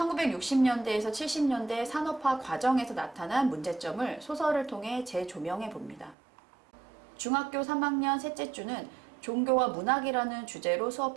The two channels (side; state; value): left; drops out; at 6.2 s